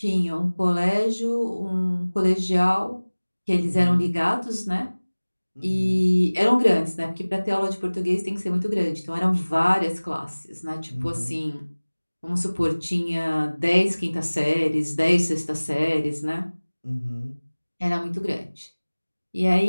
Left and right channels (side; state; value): both; inverted; correlation -1.00